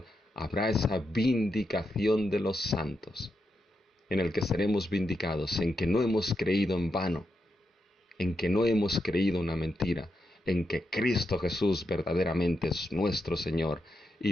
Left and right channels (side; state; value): both; normal; correlation 0.85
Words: habrá esa vindicación de los santos, en el que seremos vindicados, en que no hemos creído en vano, en que no hemos creído una mentira, en que Cristo Jesús verdaderamente es nuestro Señor